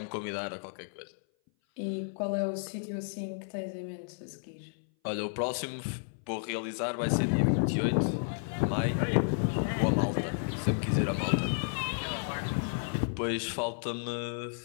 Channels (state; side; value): silent; right; 56 dB below the other